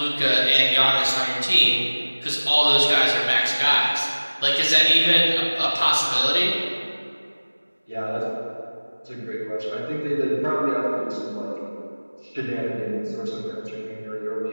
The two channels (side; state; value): both; inverted; correlation -1.00